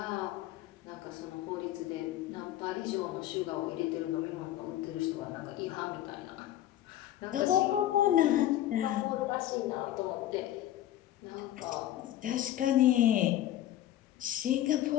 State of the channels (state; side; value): quieter; right; 13.0 dB